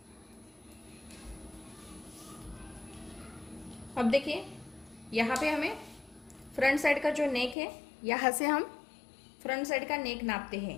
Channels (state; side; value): drops out; right; at 7.6 s